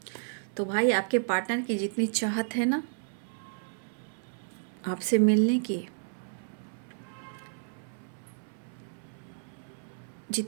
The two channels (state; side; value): silent; left; 57 dB below the other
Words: तो भाई आपके पार्टनर की जितनी चाहत है ना आपसे मिलने की,